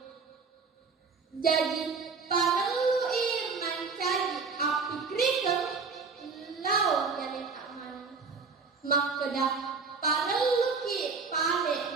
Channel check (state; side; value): quieter; left; 4.9 dB